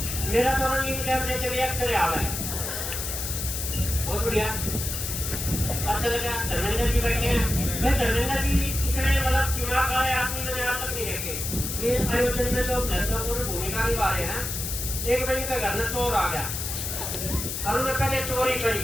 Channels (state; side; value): noise; left; hiss, 4 dB below the sound